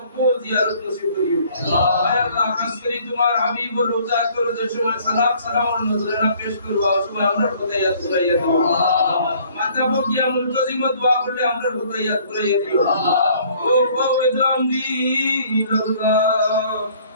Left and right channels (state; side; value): inverted; both; correlation -0.58